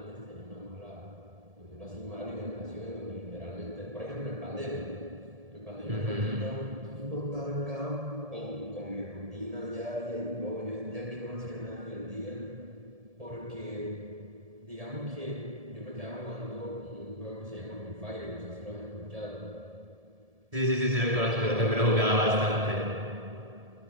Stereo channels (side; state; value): left; late; 1.7 ms